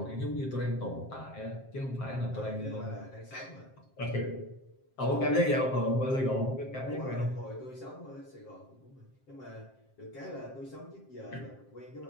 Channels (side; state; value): right; late; 7.6 ms